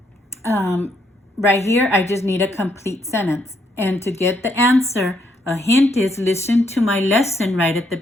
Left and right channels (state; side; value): normal; both; correlation 0.74